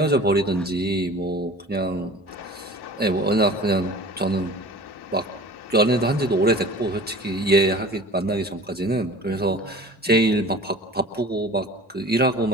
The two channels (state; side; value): normal; both; correlation 0.41